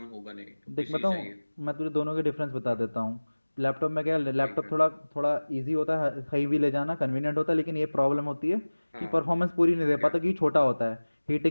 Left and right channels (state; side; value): inverted; both; correlation -1.00